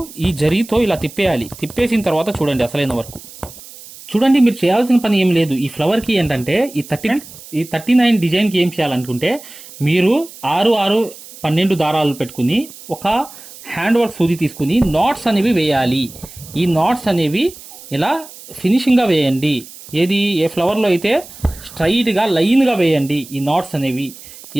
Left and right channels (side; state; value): right; noise; hiss, 18 dB below the sound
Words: ఈ జరీతో ఇలా తిప్పేయాలి. తిప్పేసిన తర్వాత చూడండి అసలైన వరకు. చూడండి, మీరు చేయాల్సిన పని ఏం లేదు. ఈ ఫ్లవర్కి ఏంటంటే ఈ 39 డిజైన్కి ఏం చేయాలనుకుంటే మీరు 6, 12 దారాలు పెట్టుకుని ఒక హ్యాండ్ వర్క్ సూది తీసుకుని నాట్స్ అనేవి వేయాలి. ఈ నాట్స్ అనేవి ఇలా ఫినిషింగ్గా వేయండి. ఏది ఏ ఫ్లవర్లో అయితే స్ట్రైట్గా లైన్గా వేయండి. ఈ నాట్స్ అనేవి ఈ